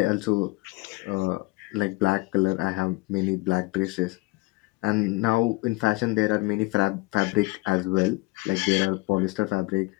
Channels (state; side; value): quieter; right; 23.3 dB